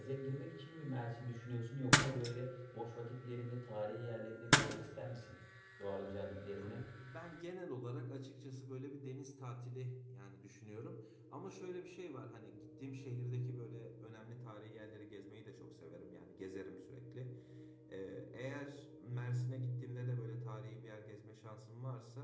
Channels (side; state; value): both; identical; correlation 1.00